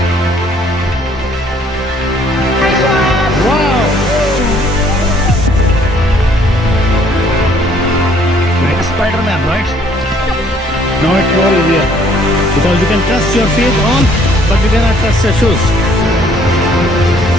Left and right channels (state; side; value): normal; both; correlation 0.61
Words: Wow! Like a Spider-Man, right? Now it's more easier. Because you can trust your feet on, but you cannot trust your shoes.